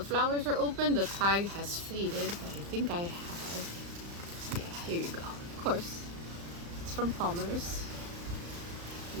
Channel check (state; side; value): late; left; 35 ms